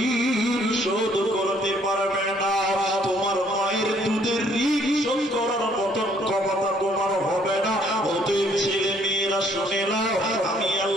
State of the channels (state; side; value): normal; both; correlation 0.64